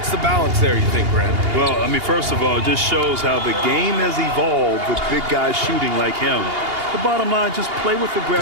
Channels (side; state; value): left; late; 2.8 ms